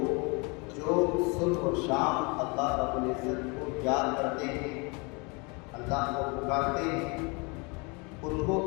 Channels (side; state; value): right; quieter; 30.1 dB